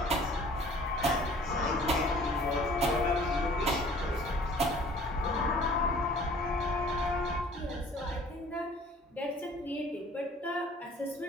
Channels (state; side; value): normal; both; correlation 0.52